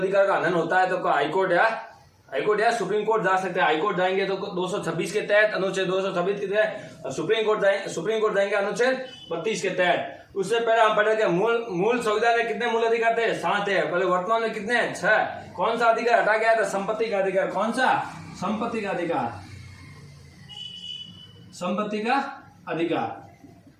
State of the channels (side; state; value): both; identical; correlation 1.00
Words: का हनन होता है तो हाईकोर्ट या सुप्रीम कोर्ट जा सकते हैं। हाईकोर्ट जाएंगे तो 226 के तहत, अनुच्छेद 226 के तहत। सुप्रीम कोर्ट जाएंगे अनुच्छेद 32 के तहत। उससे पहले हम पढ़े थे मूल संविधान में कितने मूल अधिकार थे, 7 है। पहले वर्तमान में कितने हैं, 6। कौन सा अधिकार हटा गया था, संपत्ति का अधिकार। कौन सा, संपत्ति का अधिकार। संपत्ति